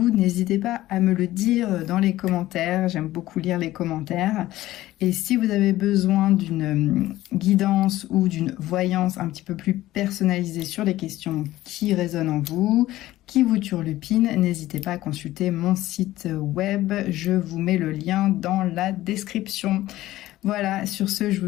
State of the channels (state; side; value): quieter; right; 15.7 dB